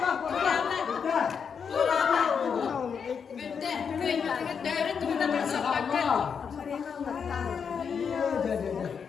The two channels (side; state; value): right; quieter; 6.6 dB